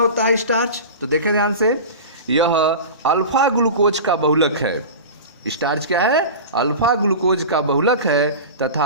है स्टार्च, तो देखें ध्यान से। यह अल्फा ग्लूकोज का बहुलक है। स्टार्च क्या है? अल्फा ग्लूकोज का बहुलक है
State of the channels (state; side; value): inverted; both; correlation -0.31